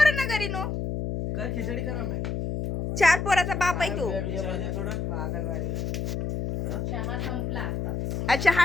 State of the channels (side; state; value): left; noise; hum, 2 dB below the sound